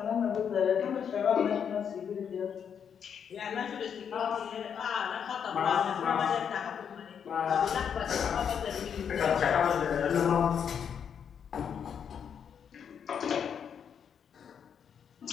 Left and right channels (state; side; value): quieter; right; 7.7 dB